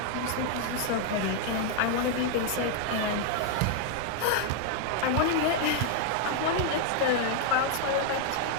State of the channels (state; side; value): different; both; correlation 0.00